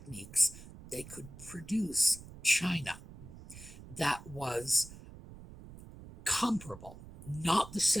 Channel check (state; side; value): noise; right; rumble, 16 dB below the sound